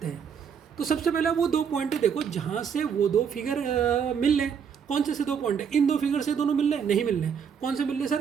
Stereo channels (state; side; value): quieter; left; 7.2 dB